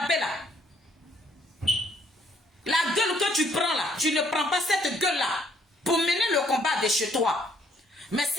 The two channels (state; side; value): normal; both; correlation 0.67